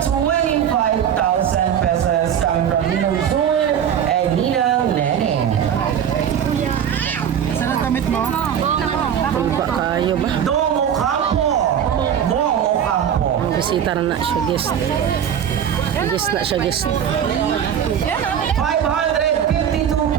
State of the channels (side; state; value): left; quieter; 8.9 dB